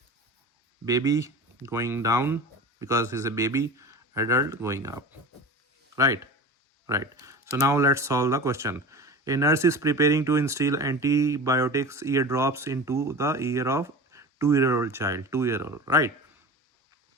baby going down because he's a baby, adult going up, right? So now let's solve the question. A nurse is preparing to instill antibiotics eardrops into the ear of 2-year-old child. 2-year-old, right?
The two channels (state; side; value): normal; both; correlation 0.33